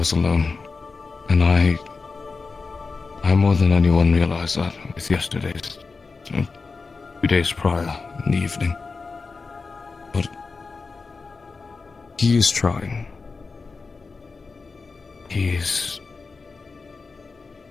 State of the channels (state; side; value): quieter; right; 4.4 dB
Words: alone, and I more than anyone realized that with yesterday's, 2 days prior in the evening. But he is trying. He is